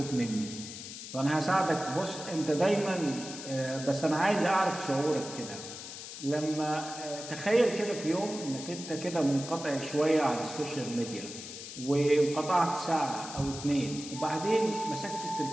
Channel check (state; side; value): noise; left; hiss, 10 dB below the sound